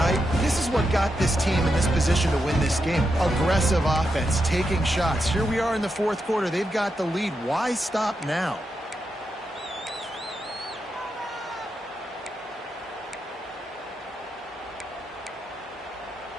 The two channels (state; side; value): normal; both; correlation 0.85